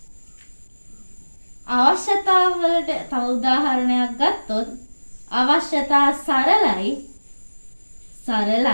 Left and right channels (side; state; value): both; inverted; correlation -1.00